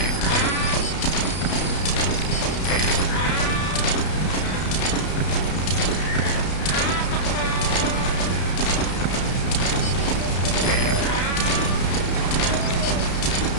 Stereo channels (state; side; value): late; right; 32 ms